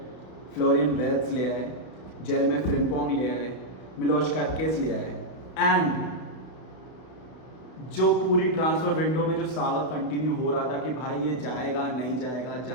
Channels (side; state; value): right; late; 32 ms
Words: फ्लोरियन वेल्स ले आए, जेरेमी फ्रिम्पोंग ले आए, मिलोश कार्केस ले आए, एंड जो पूरी ट्रांसफर विंडो में जो सागा कंटिन्यू हो रहा था कि भाई ये जाएगा नहीं जाएगा,